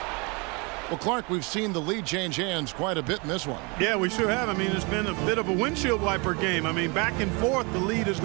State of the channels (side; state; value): left; quieter; 30.0 dB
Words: Well, Clark, we've seen the lead change hands quite a bit in this one. Yeah, we sure have. I mean, it's been a bit of a windshield wiper game. I mean, back and forth, the lead has